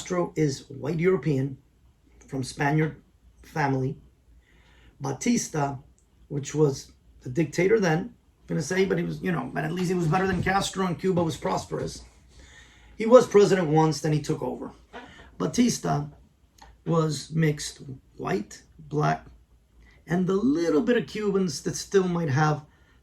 is white European from Spaniard family. Batista, which was the dictator then, I'm going to say, but he was, but at least he was better than Castro, and Cuba was prosperous. He was president once, then he took over. Batista was mixed white, black, and the little bit of Cubans that still might have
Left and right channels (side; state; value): both; identical; correlation 1.00